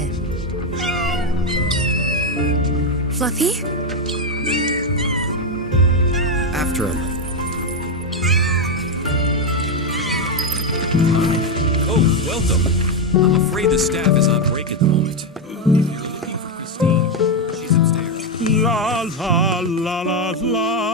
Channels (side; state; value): both; normal; correlation 0.05